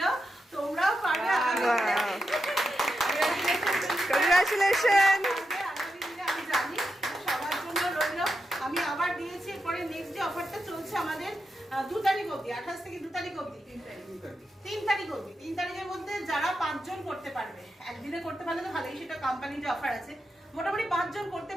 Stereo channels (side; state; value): both; normal; correlation 0.87